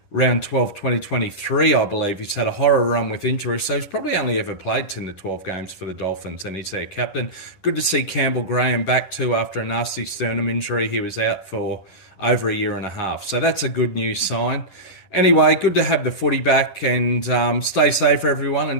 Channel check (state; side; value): late; right; 11 ms